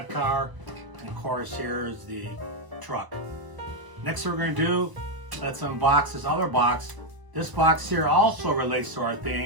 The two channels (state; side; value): late; left; 1.0 ms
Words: car. And of course, here's the truck. Next thing we're going to do, let's unbox this other box. This box here also relates to our